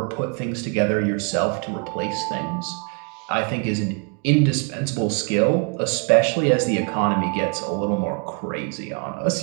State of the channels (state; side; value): quieter; left; 36.2 dB